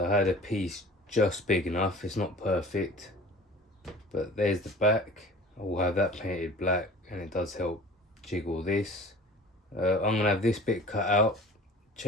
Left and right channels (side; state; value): both; normal; correlation 0.44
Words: had a piece just big enough. It's not perfect, but there's the back. I will have that painted black, and it does help jiggle this. I'm gonna have this bit cut out.